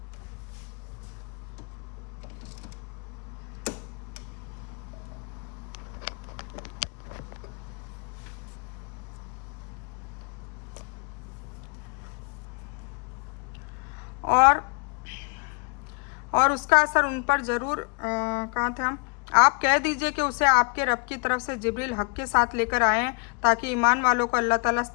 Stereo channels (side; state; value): right; quieter; 37.2 dB